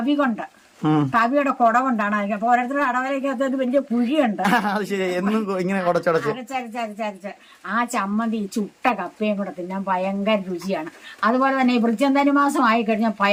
കൊണ്ട്, തവിയുടെ കുട കൊണ്ടാണ് അത്. അപ്പൊ ഓരോരുത്തരുടെ അടവലയ്ക്കകത്ത് ഒരു വലിയ കുഴിയുണ്ട്. അരച്ചരച്ചരച്ചരച്ച് ആ ചമ്മന്തി ചുട്ട കപ്പയും കൂടെ തിന്നാൻ ഭയങ്കര രുചിയാണ്. അതുപോലെ തന്നെ ഈ വൃശ്ചിക മാസം ആയിക്കഴിഞ്ഞാൽ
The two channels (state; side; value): identical; both; correlation 1.00